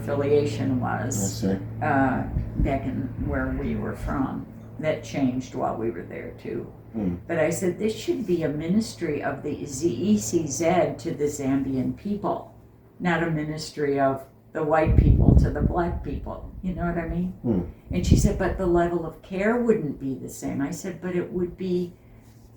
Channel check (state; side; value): identical; both; correlation 1.00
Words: I was. see. Back in where we were from, that changed while we were there too. But I said this should be a ministry of the ECZ to the Zambian people, not a ministry of the white people to the black people. You know what I mean? And she said, but the level of care wouldn't be the same. I said, but it would be